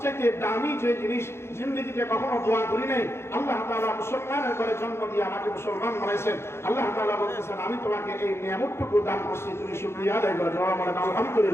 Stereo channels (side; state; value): right; late; 0.12 ms